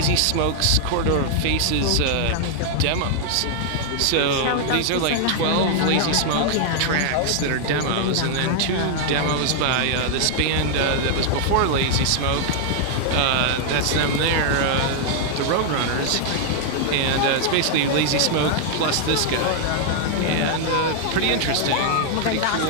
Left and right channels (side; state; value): both; different; correlation -0.01